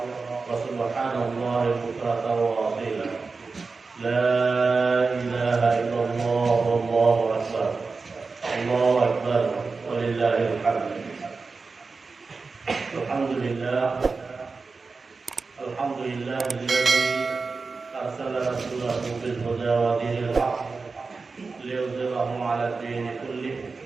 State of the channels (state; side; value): quieter; left; 4.3 dB